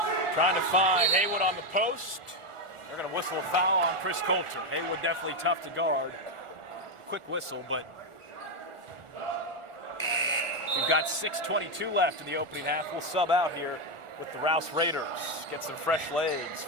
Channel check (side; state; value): left; late; 1.4 ms